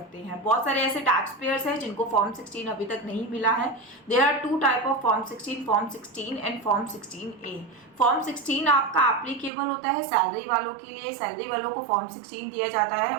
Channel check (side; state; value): left; drops out; at 9.5 s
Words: हैं। बहुत सारे ऐसे टैक्स पेयर्स हैं जिनको फॉर्म 16 अभी तक नहीं मिला है। There are two type of form 16 and form 16A। Form 16 आपका एप्लीकेबल होता है सैलरी वालों के लिए। सैलरी वालों को फॉर्म 16 दिया जाता है,